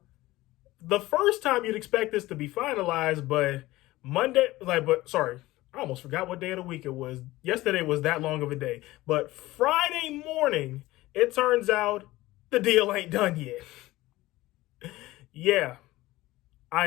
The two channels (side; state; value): right; quieter; 18.1 dB